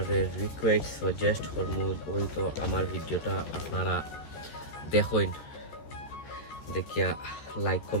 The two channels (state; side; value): late; right; 14 ms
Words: রিকোয়েস্ট সাজেস্ট করবো ওই তো আমার ভিডিওটা আপনারা দেখুন, দেখিয়া লাইক